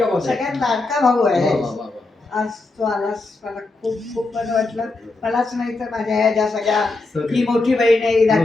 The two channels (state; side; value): quieter; right; 3.4 dB